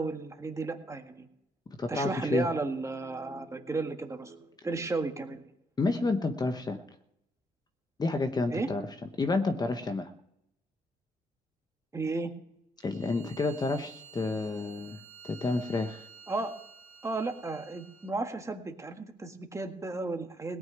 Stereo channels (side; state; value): both; normal; correlation 0.75